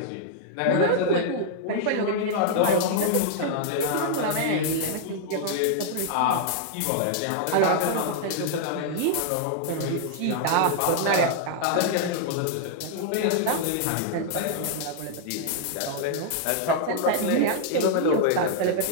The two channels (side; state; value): both; different; correlation -0.01